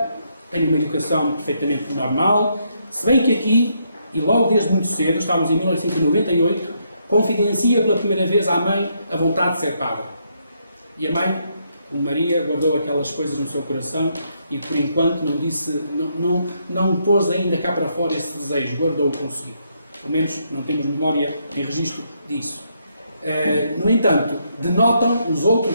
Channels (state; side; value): inverted; both; correlation -0.76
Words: tem uma educação perfeitamente normal. Se bem que aqui, e logo desde muito cedo, estávamos em 1998, confidencia pela primeira vez à mãe a vontade de ser padre. E a mãe, como Maria, guardou aquelas coisas no seu coração e, por enquanto, não disse, não pôs ainda cá para fora esse desejo, guardou-o consigo. Pelo menos não temos memória em registro disso. No entanto, denotam, os